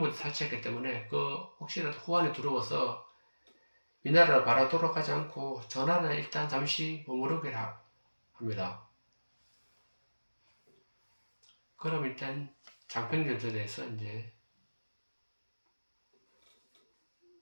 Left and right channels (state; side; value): inverted; both; correlation -1.00